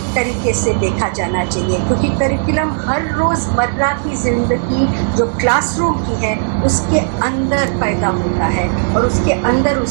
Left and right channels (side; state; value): left; silent; digital silence